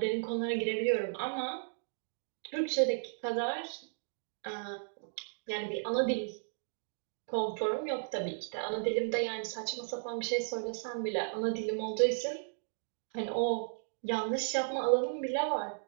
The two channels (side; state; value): left; silent; digital silence